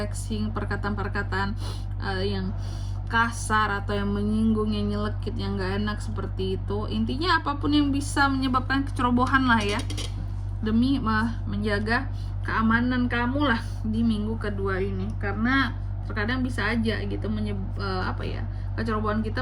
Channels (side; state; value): both; identical; correlation 1.00